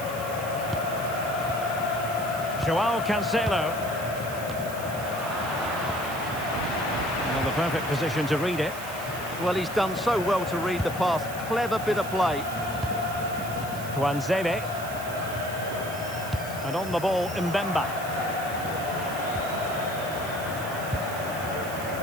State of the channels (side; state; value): right; noise; hiss, 13 dB below the sound